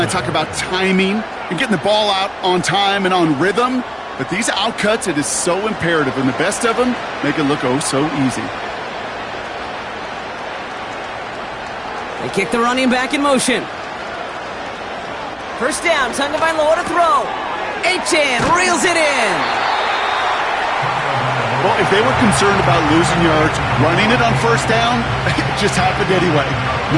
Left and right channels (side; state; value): both; identical; correlation 1.00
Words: talk about timing and getting the ball out on time and on rhythm, But these outcuts, it is so imperative, and the best of them make it look oh so easy. They kick the running back in motion. First down, Tagovailoa to throw. Achane reels it in. Well, if they were concerned about losing yards, running it on first down, it just happened anyway.